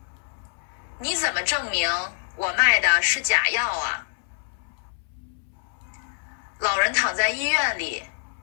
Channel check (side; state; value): right; silent; 61 dB below the other